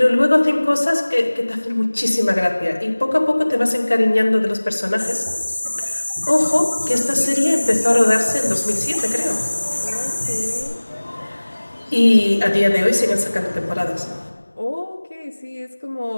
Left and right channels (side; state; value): both; inverted; correlation -1.00